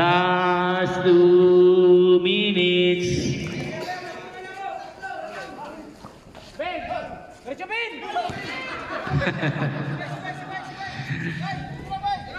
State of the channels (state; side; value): identical; both; correlation 1.00